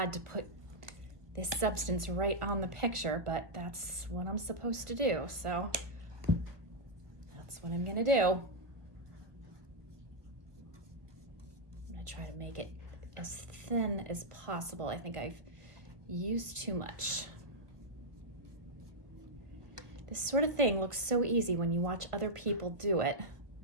to put this substance right on the picture, but that's what I'm supposed to do. So that's what I'm gonna do. try to make it as thin as possible. I think I've used too much. This sort of thing looks so easy when you watch other people do it,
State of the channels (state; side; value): late; left; 1.2 ms